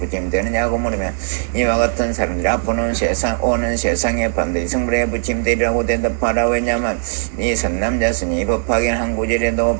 물으면 이와 같은 사람들이 앞으로는 오는 세상에 반드시 성불에 부침되리라고 대답하라. 왜냐하면 이 선남자스니 법하긴 한 구절에도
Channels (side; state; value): left; silent; digital silence